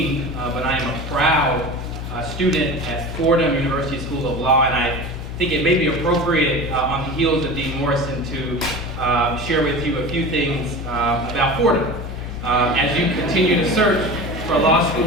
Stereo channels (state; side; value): noise; left; hum, 7 dB below the sound